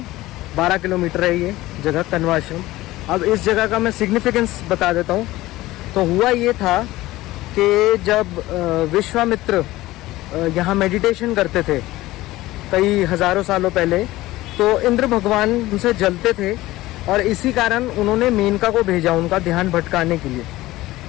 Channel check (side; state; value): right; quieter; 17.5 dB